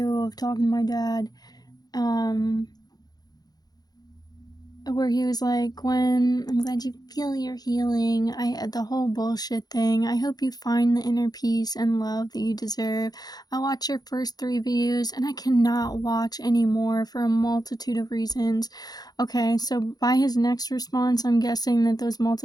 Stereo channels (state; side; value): late; right; 0.19 ms